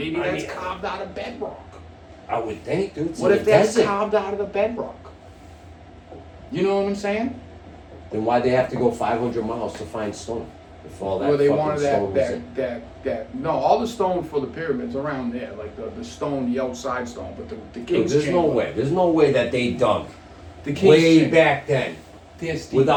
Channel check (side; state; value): both; identical; correlation 1.00